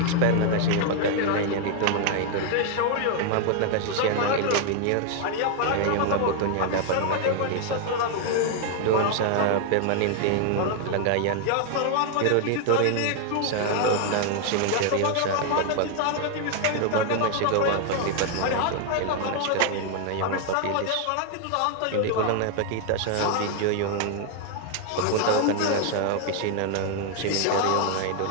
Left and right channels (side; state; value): both; different; correlation 0.00